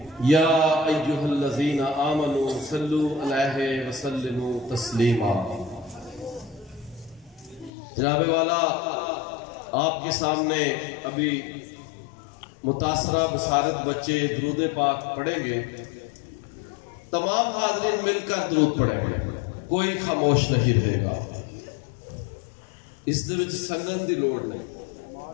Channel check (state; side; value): drops out; right; at 7.7 s